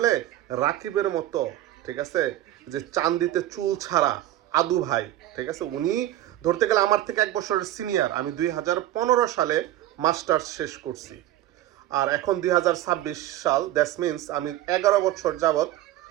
রাকিবের মতো, ঠিক আছে, যে চান্দিতে চুল ছাড়া আদু ভাই, ঠিক আছে, উনি ধরতে গেলে আমার থেকে 1 বছরের সিনিয়র। আমি 2015 সালে মাস্টার্স শেষ করছি, আর এখন 2026 সাল। দ্যাটস মিনস আমি 11 বছর যাবৎ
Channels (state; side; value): quieter; left; 14.0 dB